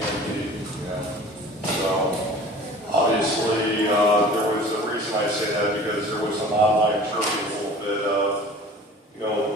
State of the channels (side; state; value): both; normal; correlation 0.43